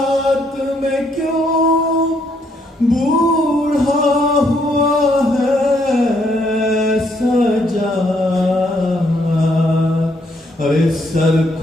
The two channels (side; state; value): both; normal; correlation 0.72